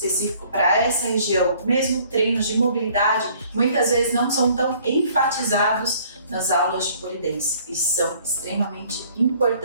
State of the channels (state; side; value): inverted; both; correlation -0.58